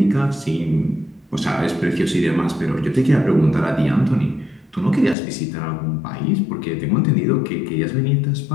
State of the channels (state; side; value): drops out; right; at 5.2 s